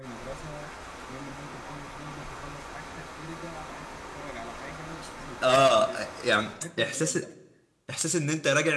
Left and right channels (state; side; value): identical; both; correlation 1.00